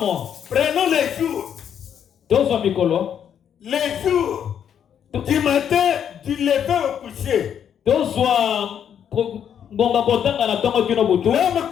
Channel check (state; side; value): quieter; right; 8.7 dB